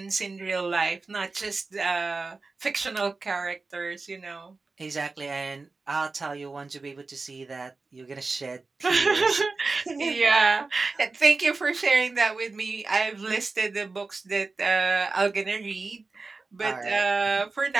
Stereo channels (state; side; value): quieter; left; 3.8 dB